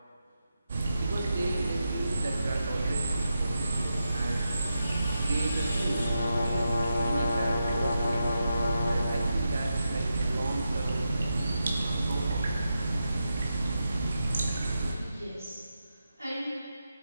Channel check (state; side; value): inverted; both; correlation -0.88